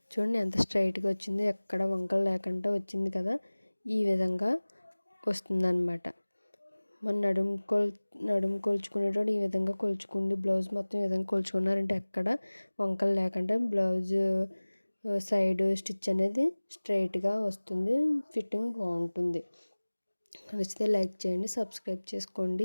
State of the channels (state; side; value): inverted; both; correlation -1.00